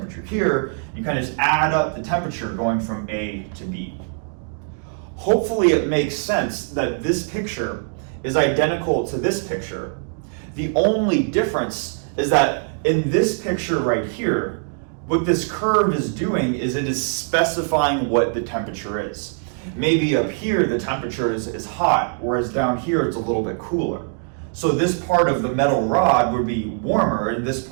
here? You kind of just add up the temperature going from A to B. Hopefully it makes sense that this picture is identical to this picture. The only difference is that in this picture right here, what this curve is doing is it is specifying what the temperature is. Maybe up here the temperature is hot, whereas down here it's a little bit cooler. So this part of the metal rod would be warmer and this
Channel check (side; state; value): left; silent; 56 dB below the other